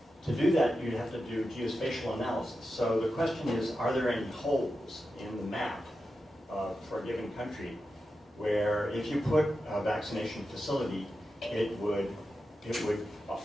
To do that, you'd have to do geospatial analysis. So the question is, are there any holes in the map for a given country where if you put a vaccination facility, it would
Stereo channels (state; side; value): normal; both; correlation 0.90